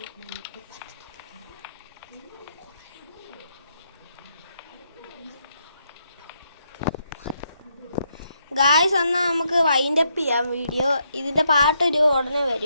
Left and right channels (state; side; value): inverted; both; correlation -0.77